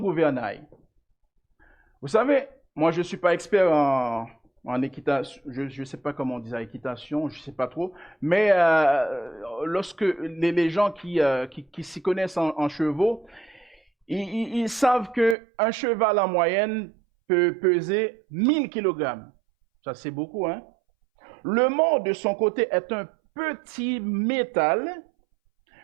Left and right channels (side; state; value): left; drops out; at 15.4 s